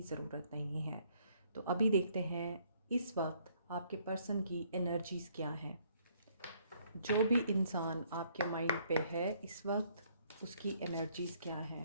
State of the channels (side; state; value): both; inverted; correlation -0.65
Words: ज़रूरत नहीं है। तो अभी देखते हैं इस वक्त आपके पर्सन की एनर्जीज़ क्या हैं। जो भी इंसान आपके माइंड पे है इस वक्त, उसकी एनर्जीज़ क्या